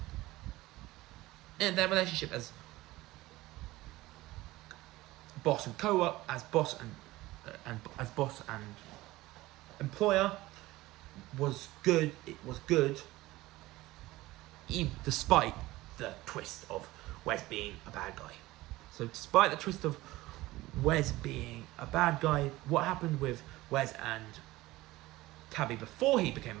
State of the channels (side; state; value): left; quieter; 18.4 dB